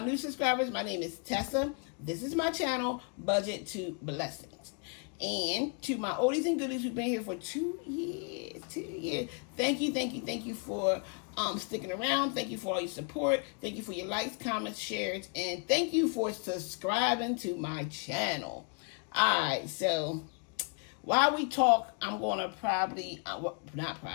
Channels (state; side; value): quieter; right; 38.3 dB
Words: new subscribers. My name is Tessa. This is my channel, Budget to Blessings. And to my oldies and goodies who've been here for 2 years, thank you for sticking around. Thank you for all your support. Thank you for your likes, comments, shares, and thank you for subscribing to my channel. All right, so while we talk, I'm going to